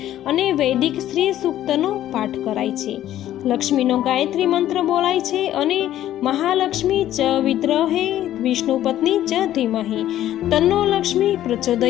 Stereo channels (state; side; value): quieter; right; 12.6 dB